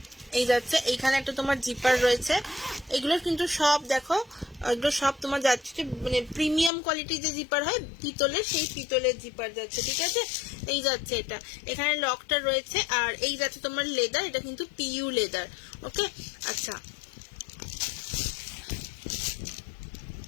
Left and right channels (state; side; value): drops out; right; at 6.7 s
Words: এই যাচ্ছে, এইখানে একটা তোমার জিপার রয়েছে। এগুলো কিন্তু সব দেখো, এগুলো সব তোমার যাচ্ছে মানে প্রিমিয়াম কোয়ালিটির যে জিপার হয় পিতলের, সেই পিতলের জিপার যাচ্ছে, ঠিক আছে? এই যাচ্ছে এটা, এখানে লকটা রয়েছে। আর এই যাচ্ছে তোমার লেদার, এটা কিন্তু পিইউ লেদার, ওকে। আচ্ছা